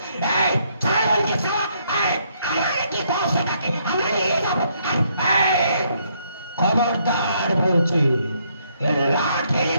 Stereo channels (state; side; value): inverted; both; correlation -0.71